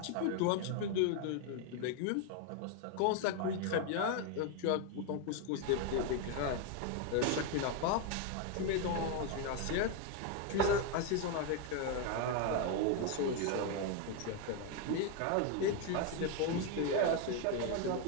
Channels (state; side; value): different; both; correlation 0.01